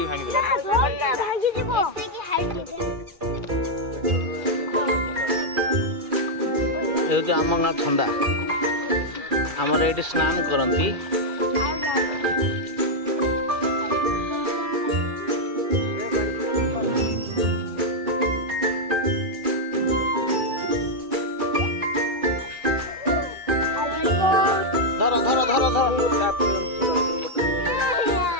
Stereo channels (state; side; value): late; left; 2.4 ms